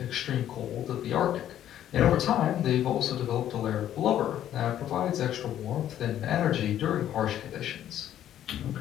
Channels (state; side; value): quieter; right; 11.3 dB